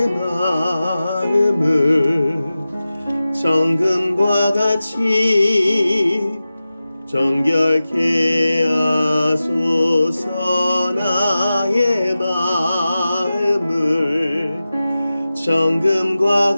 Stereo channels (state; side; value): inverted; both; correlation -0.95